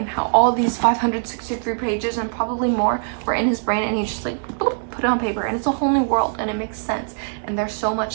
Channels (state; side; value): silent; left; 64 dB below the other